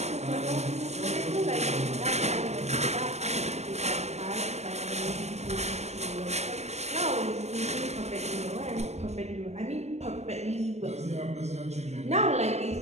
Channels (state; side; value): late; left; 0.32 ms